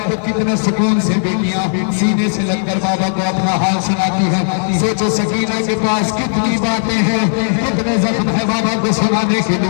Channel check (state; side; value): silent; right; digital silence